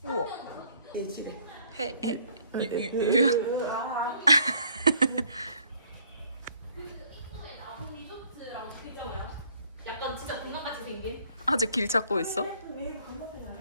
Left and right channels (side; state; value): both; inverted; correlation -0.61